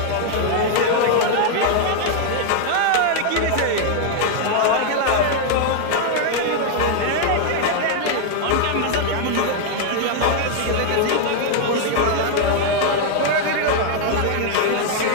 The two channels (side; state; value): both; different; correlation 0.00